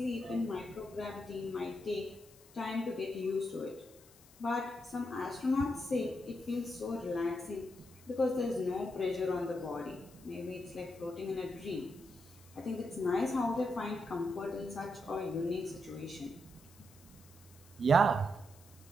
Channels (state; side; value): noise; left; hiss, 24 dB below the sound